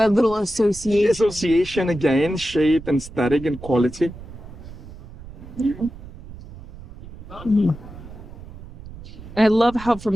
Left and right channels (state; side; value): noise; right; rumble, 15 dB below the sound